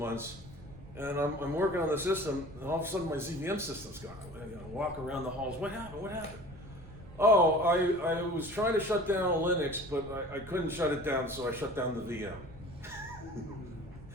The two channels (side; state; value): right; noise; rumble, 18 dB below the sound